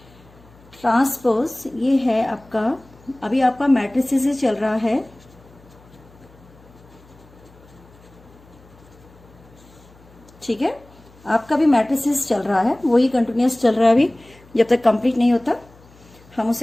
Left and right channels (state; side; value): noise; left; hum, 26 dB below the sound